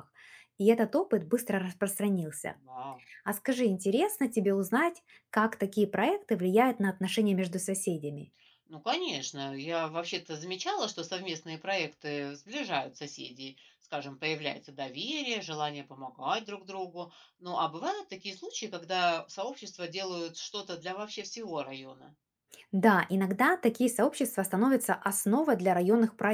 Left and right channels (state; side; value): identical; both; correlation 1.00